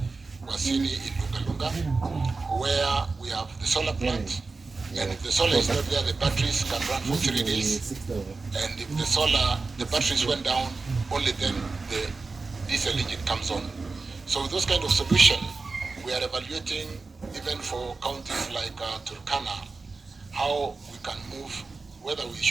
in Lunga, where we have the solar plant, and if the solar is not there, the batteries can run for 3 days, and if the batteries went down, only then the diesel engine comes on. So with those kind of solution, we are evaluating even for counties like Turkana, how we can move, whether we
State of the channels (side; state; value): left; quieter; 4.0 dB